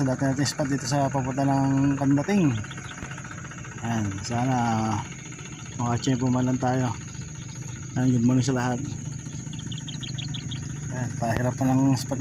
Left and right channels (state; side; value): noise; left; hum, 26 dB below the sound